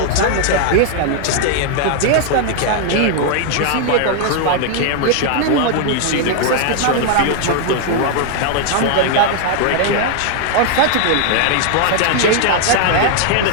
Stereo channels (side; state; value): both; different; correlation 0.00